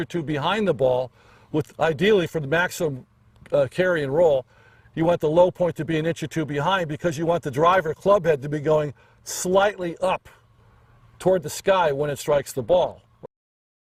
two behind the ball, with ideally for the maximum carry and roll, you want the low point to be an inch or two behind because you want the driver club head to be going slightly up toward the sky when it strikes the ball.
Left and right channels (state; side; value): identical; both; correlation 1.00